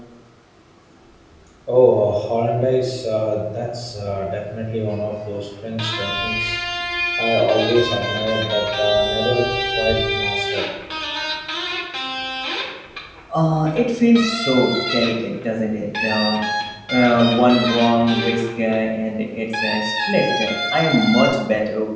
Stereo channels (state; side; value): identical; both; correlation 1.00